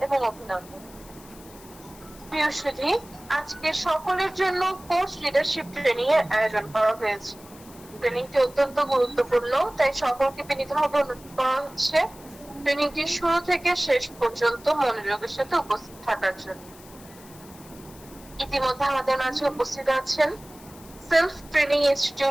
এবং অভিনন্দন। প্রিয় সুধী, আজকে সকলের জন্য কোর্স লিডারশিপ ট্রেনিং এর আয়োজন করা হয়েছে। ট্রেনিংটি অত্যন্ত গুরুত্বপূর্ণ, তাই সকলকে বিনীতভাবে অনুরোধ করা হচ্ছে ট্রেনিংটি শুরু থেকে শেষ পর্যন্ত মনোযোগের সাথে উপস্থিত থাকার জন্য। ইতিমধ্যে আমাদের মাঝে উপস্থিত আছেন সেলফ ট্রেনিং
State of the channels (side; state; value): left; noise; hiss, 21 dB below the sound